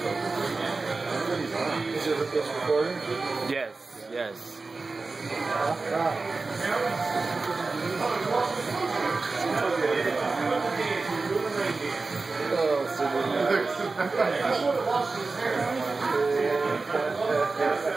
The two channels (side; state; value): left; quieter; 3.8 dB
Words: Is it recording? Yes, yes.